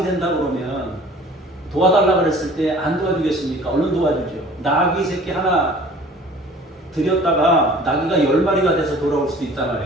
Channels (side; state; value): both; normal; correlation 0.48